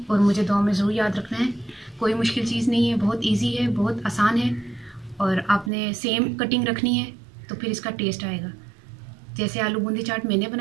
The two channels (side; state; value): left; drops out; at 5.7 s